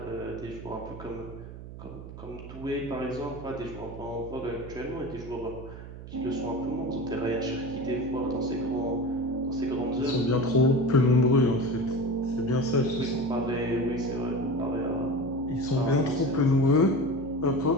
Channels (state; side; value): noise; right; hum, 13 dB below the sound